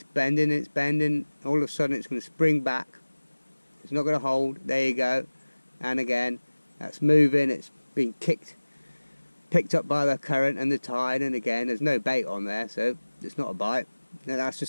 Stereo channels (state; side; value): inverted; both; correlation -1.00